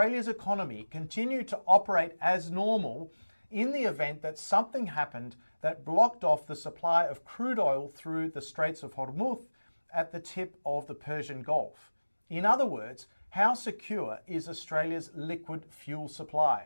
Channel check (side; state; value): both; inverted; correlation -1.00